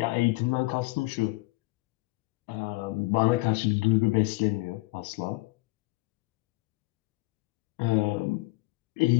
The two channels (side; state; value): right; quieter; 23.0 dB